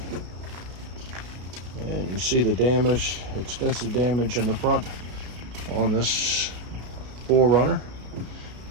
And you see the damage, extensive damage in the front on this 4Runner.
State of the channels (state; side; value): late; left; 33 ms